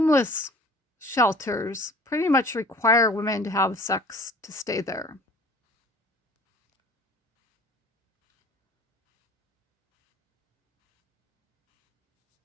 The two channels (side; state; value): both; normal; correlation 0.47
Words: shelters pretty much require women to have sex to stay there.